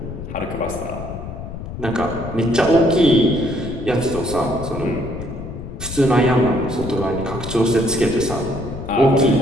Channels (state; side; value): noise; left; rumble, 9 dB below the sound